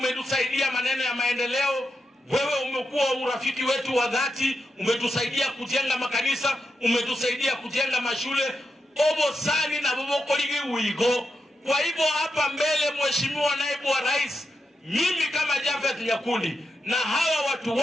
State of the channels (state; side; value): normal; both; correlation 0.87